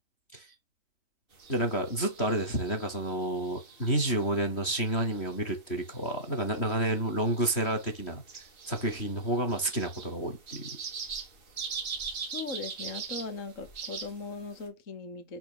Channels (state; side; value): late; right; 3.1 ms